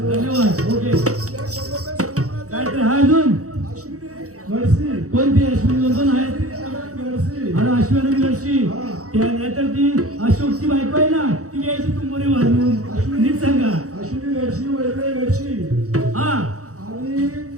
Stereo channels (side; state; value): left; late; 0.65 ms